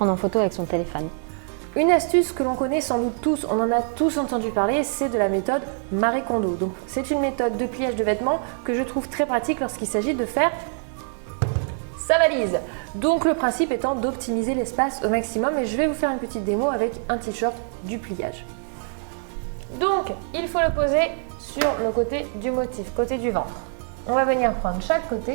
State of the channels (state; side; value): silent; left; 58 dB below the other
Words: en photo avec son téléphone. Une astuce que l'on connaît sans doute tous, on en a tous entendu parler, c'est de la méthode Marie Kondo. Donc c'est une méthode de pliage de vêtements que je trouve très pratique lorsqu'il s'agit de faire sa valise. Donc le principe étant d'optimiser l'espace au maximum et je vais vous faire une petite démo avec un t-shirt du pliage. Donc il faut le poser sur le côté du motif, côté du ventre. On va venir prendre chaque